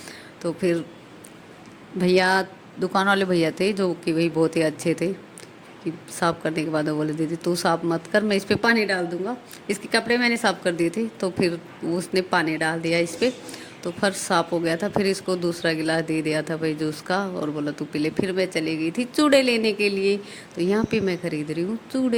तो फिर भैया, दुकान वाले भैया थे जो कि भाई बहुत ही अच्छे थे, कि साफ़ करने के बाद वो बोले दीदी तू साफ़ मत कर, मैं इस पर पानी डाल दूंगा। इसके कपड़े मैंने साफ़ कर दिए थे, तो फिर उसने पानी डाल दिया इस पर, तो फर्श साफ़ हो गया था। फिर इसको दूसरा गिलास दे दिया था भाई जूस का, और बोला तू पी ले। फिर मैं चली गई थी चूड़े लेने के लिए। तो यहाँ पे मैं खरीद रही हूँ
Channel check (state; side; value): identical; both; correlation 1.00